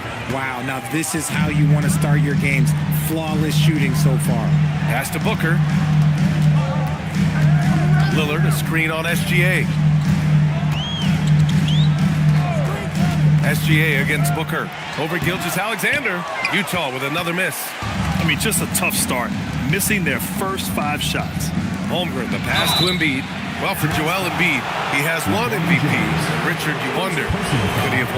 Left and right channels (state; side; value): identical; both; correlation 1.00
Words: Wow, now this is how you want to start your games. Flawless shooting so far. Pass to Booker. Lillard, a screen on SGA. SGA against Booker. Over Gilgeous-Alexander. Utah with another miss. I mean, just a tough start. Missing their first 5 shots. Holmgren, the pass to Embiid. Well, for Joel Embiid, he has 1 MVP. Richard, you wonder, could he have